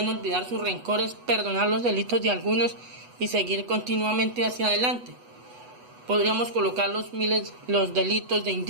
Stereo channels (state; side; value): late; left; 8.1 ms